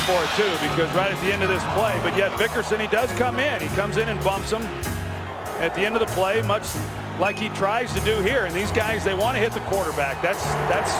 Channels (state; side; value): identical; both; correlation 1.00